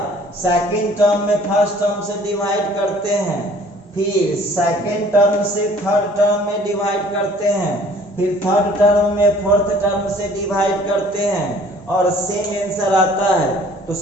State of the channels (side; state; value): both; normal; correlation 0.54